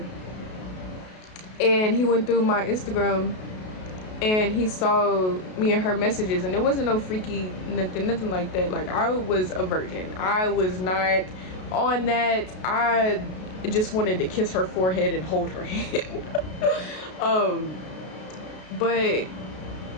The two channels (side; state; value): right; late; 33 ms